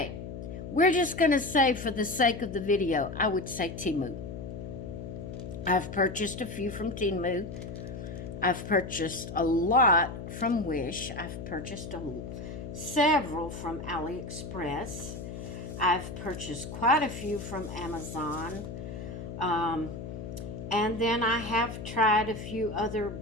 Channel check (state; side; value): noise; left; hum, 8 dB below the sound